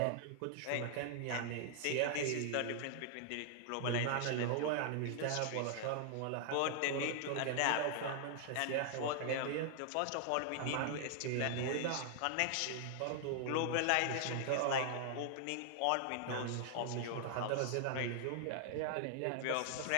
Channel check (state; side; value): different; both; correlation 0.00